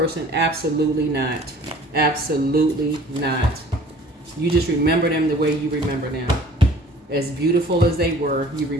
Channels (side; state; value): both; normal; correlation 0.50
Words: absolutely not. Absolutely not. You just remember them the way you remember them. As beautiful as they were, you